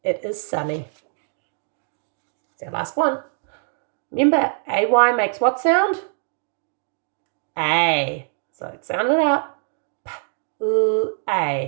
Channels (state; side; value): silent; left; digital silence